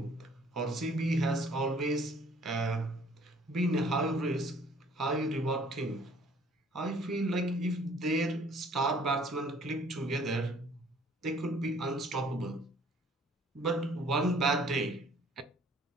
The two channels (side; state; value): both; normal; correlation 0.56